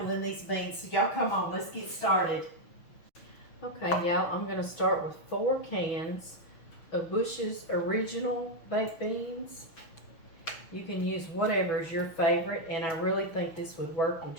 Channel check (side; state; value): right; late; 6.2 ms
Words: in these beans. So y'all come on, let's get started. Okay y'all, I'm gonna start with 4 cans of Bush's Original Baked Beans. You can use whatever is your favorite, and I really think this would work with